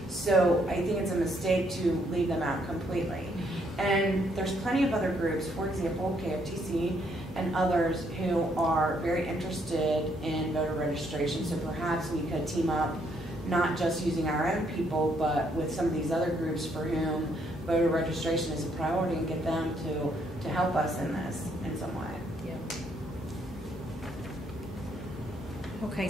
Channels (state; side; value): normal; both; correlation 0.71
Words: So I think it's a mistake to leave them out completely. And there's plenty of other groups, for example, KFTC and others, who are very interested in voter registration. So perhaps we could team up, not just using our own people, but with some of these other groups for whom voter registration is a priority, and get them to help us in this in some way. Okay,